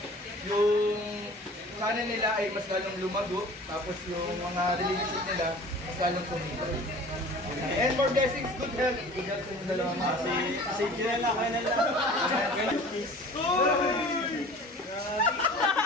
yung sana nila ay mas lalong lumago tapos yung mga relationship nila mas lalong tumibay. And more blessings, good health sa inyo dalawa. Si Jirela, kayo na lang.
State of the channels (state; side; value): normal; both; correlation 0.44